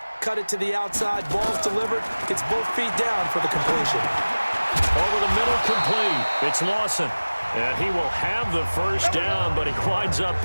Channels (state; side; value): inverted; both; correlation -1.00